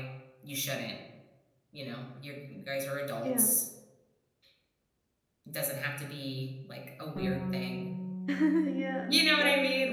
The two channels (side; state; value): both; identical; correlation 1.00